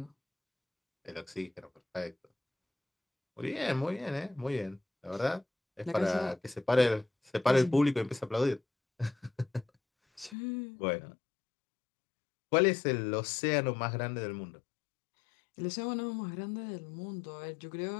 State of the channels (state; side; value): drops out; right; at 10.4 s